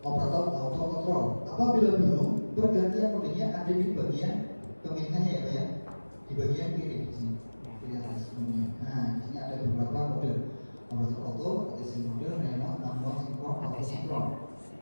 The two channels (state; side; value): inverted; both; correlation -1.00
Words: operator auto control. Apabila belum, pergantian modenya ada di bagian pemilihannya ya Pak ya. Di bagian kiri di sini. Kiri atas semuanya. Nah, di sini ada beberapa mode. Operator auto, ATC mode, remote, manual, sinkron, auto sinkron.